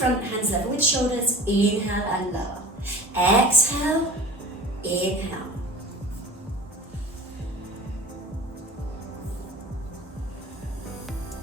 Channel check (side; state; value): both; normal; correlation 0.39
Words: hands level with shoulders. Inhale and lower. Exhale, inhale.